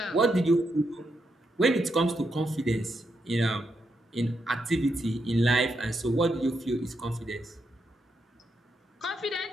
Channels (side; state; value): both; normal; correlation 0.82